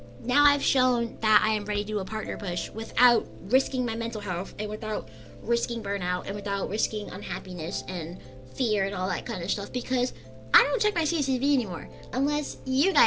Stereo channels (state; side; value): identical; both; correlation 1.00